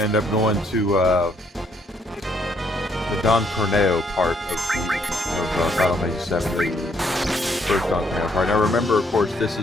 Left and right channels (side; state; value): both; normal; correlation 0.70